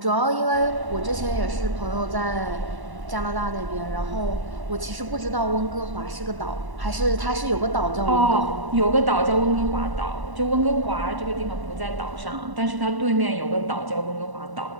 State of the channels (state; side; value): late; left; 1.0 ms